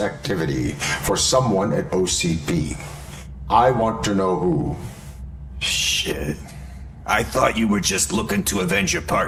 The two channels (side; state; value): both; identical; correlation 1.00